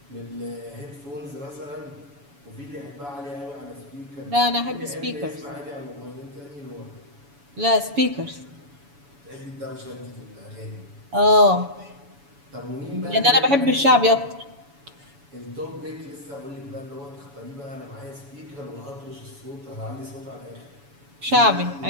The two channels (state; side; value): late; left; 7.1 ms